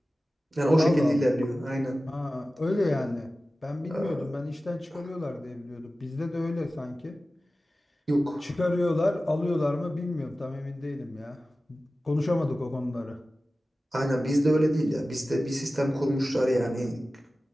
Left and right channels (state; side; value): normal; both; correlation 0.95